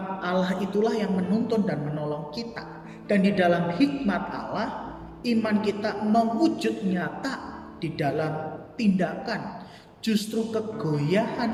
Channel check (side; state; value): both; identical; correlation 1.00